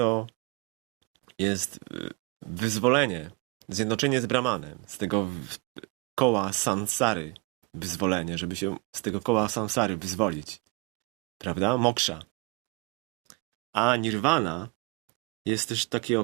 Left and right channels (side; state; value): left; quieter; 27.1 dB